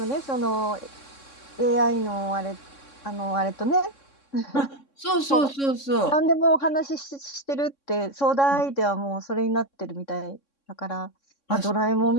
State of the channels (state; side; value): late; right; 3.6 ms